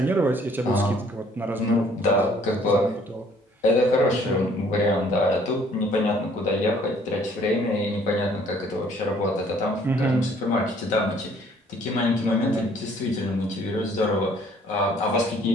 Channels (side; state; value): both; normal; correlation 0.59